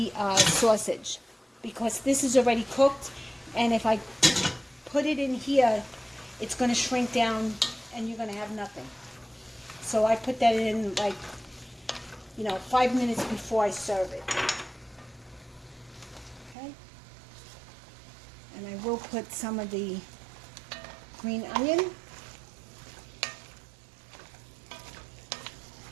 sausage, because this is already cooked, and if I put it in here, it's going to shrink down and you're going to have nothing. So I put that in, like, 5 minutes before I serve it. Okay? And I will put some of the green onion.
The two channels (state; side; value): drops out; left; at 16.6 s